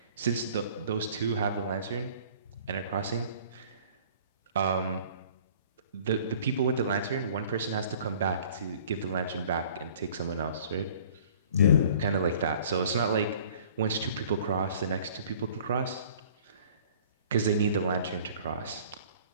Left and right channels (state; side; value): inverted; both; correlation -0.51